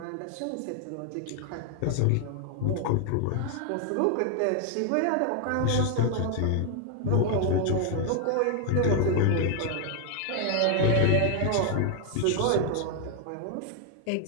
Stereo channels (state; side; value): different; both; correlation 0.00